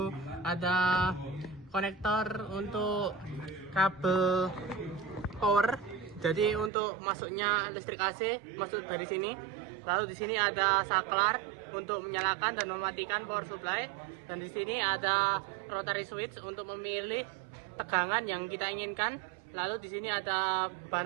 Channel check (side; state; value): left; drops out; at 6.7 s